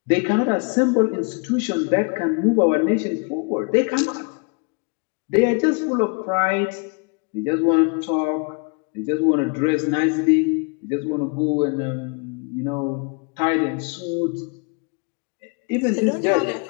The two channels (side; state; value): right; quieter; 32.9 dB